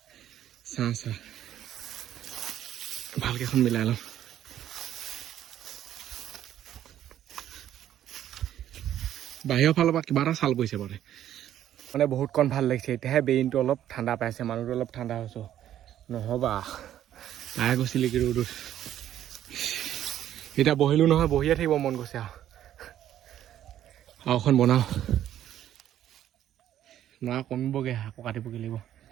ছাঁ ছাঁ ভালকৈ এখন মিলাই লওঁ। বাহিৰৰ ফালৰ পৰা কিবা এটা ছাল পৰিছে বাৰু, মানে বহুতকণ ভাল লাগিছে। এতিয়াহে ব্ৰেইনটো অলপ ঠাণ্ডা পাইছে, মানুহটো অলপ ঠাণ্ডা হৈছোঁ। নহ'বা পাই গৈছিলে কি ৰ'দত। এতিয়া বহিলোঁ নহয়, বহিয়ে থাকিব মন গৈছে আৰু এখন বনাওঁ। নোৱাৰা কমিবগৈ, আকৌ কাটিবগৈ লাগিব।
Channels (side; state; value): left; quieter; 11.5 dB